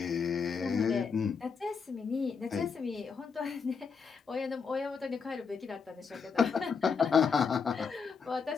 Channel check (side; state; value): right; quieter; 5.7 dB